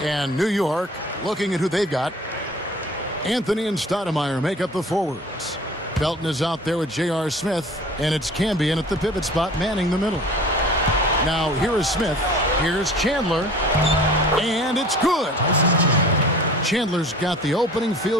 New York, looking at who they've got, Anthony and Stoudemire make up the forwards. Felton is out there with J.R. Smith, and it's Cambion at the pivot spot manning the middle. Now here is Smith, here's Chandler, and it's good. Chandler's got the opening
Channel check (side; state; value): both; normal; correlation 0.45